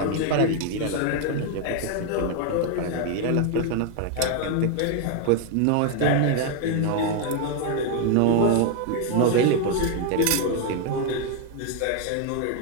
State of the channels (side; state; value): both; different; correlation 0.00